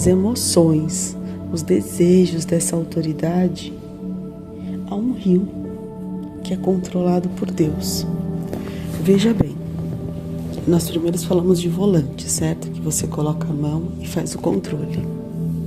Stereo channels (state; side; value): identical; both; correlation 1.00